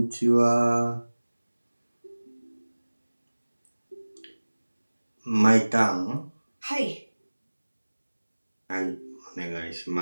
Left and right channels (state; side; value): inverted; both; correlation -1.00